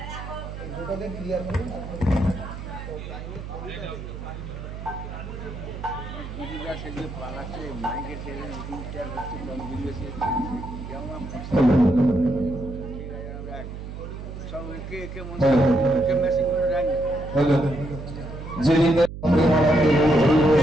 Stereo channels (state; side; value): noise; right; hum, 9 dB below the sound